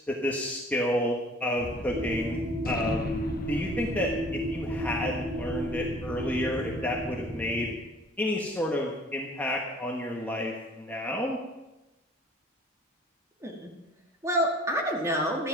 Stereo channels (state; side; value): normal; both; correlation 0.51